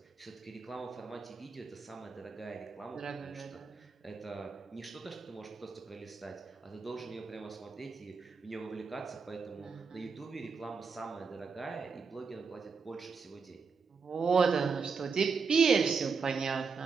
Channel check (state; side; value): quieter; left; 5.2 dB